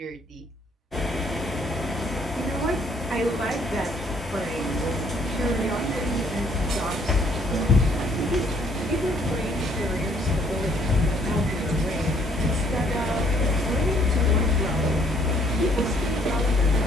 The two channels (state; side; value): normal; both; correlation 0.63